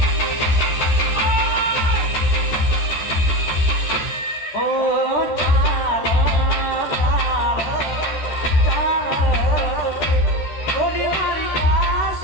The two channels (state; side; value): late; right; 13 ms